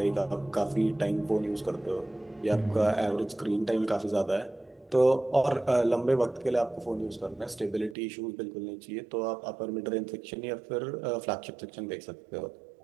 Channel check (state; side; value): drops out; left; at 8.0 s